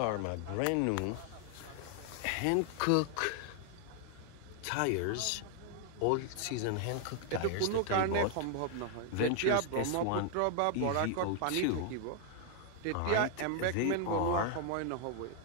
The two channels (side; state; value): both; different; correlation 0.00